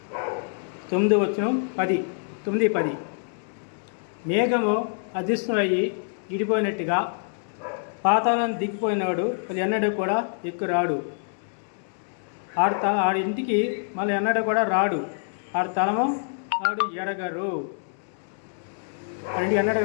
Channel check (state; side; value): silent; right; digital silence